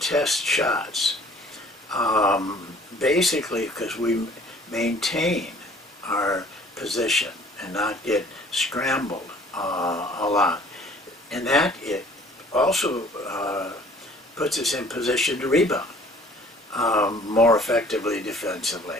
shots, basically because we maintain our position and not get scrambled a lot. And that it also puts us in position to rebound more effectively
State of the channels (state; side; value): normal; both; correlation 0.53